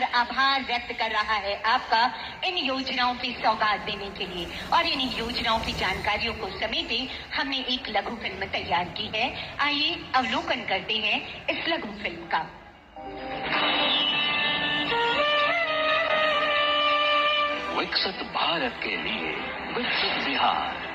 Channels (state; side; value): identical; both; correlation 1.00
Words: आभार व्यक्त कर रहा है आपका इन योजनाओं की सौगात देने के लिए। और इन योजनाओं की जानकारियों को समेटे हमने एक लघु फिल्म तैयार की है। आइए अवलोकन करते हैं इस लघु फिल्म का। विकसित भारत के लिए विकसित बिहार,